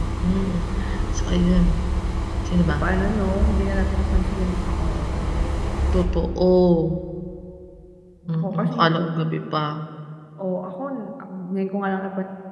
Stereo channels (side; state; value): both; identical; correlation 1.00